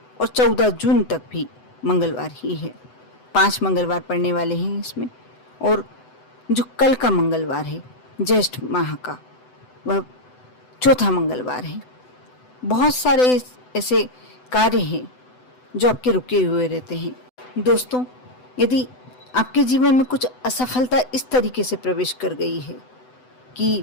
और 14 जून तक भी मंगलवार ही है। 5 मंगलवार पड़ने वाले हैं इसमें। और जो कल का मंगलवार है ज्येष्ठ माह का, वह चौथा मंगलवार है। बहुत सारे ऐसे कार्य हैं जो आपके रुके हुए रहते हैं। दोस्तों, यदि आपके जीवन में कुछ असफलता इस तरीके से प्रवेश कर गई है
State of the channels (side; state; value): right; late; 7.9 ms